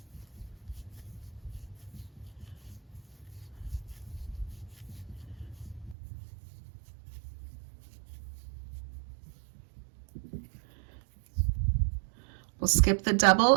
We'll skip the double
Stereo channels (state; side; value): drops out; left; at 6.0 s